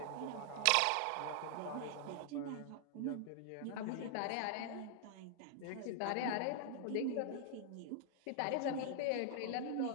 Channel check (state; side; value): different; both; correlation -0.01